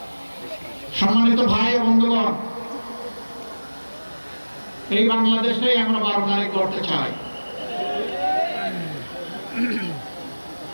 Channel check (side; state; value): both; inverted; correlation -1.00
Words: সম্মানিত ভাই ও বন্ধুগণ, এই বাংলাদেশেই আমরা 12 তারিখ করতে চাই।